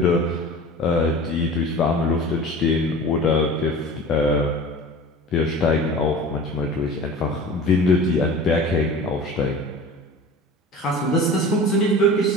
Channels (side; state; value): both; normal; correlation 0.38